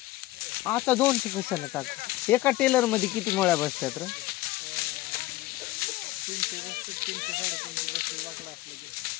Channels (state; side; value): quieter; right; 17.6 dB